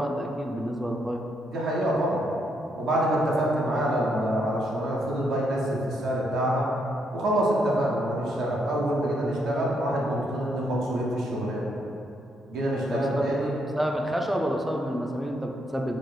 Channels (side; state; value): both; normal; correlation 0.76